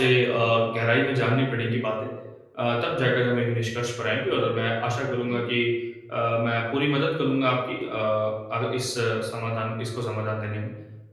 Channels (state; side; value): identical; both; correlation 1.00